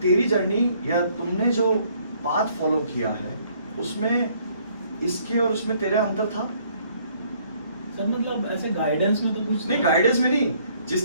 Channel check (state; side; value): inverted; both; correlation -0.63